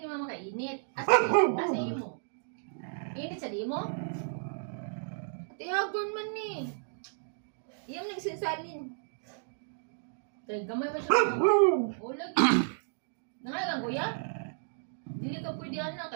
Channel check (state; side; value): silent; left; digital silence